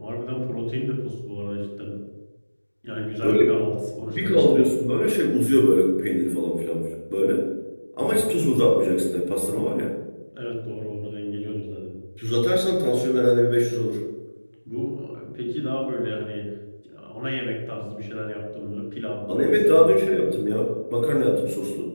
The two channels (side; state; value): both; inverted; correlation -1.00